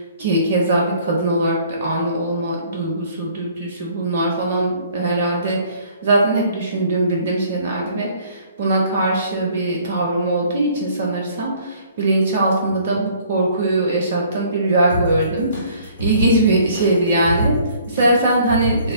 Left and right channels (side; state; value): both; inverted; correlation -0.57